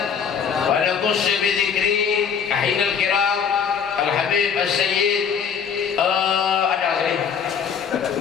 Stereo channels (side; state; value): right; quieter; 7.0 dB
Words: wa naqus bi dzikri ahinal kiram al-habib as-sayyid ada sini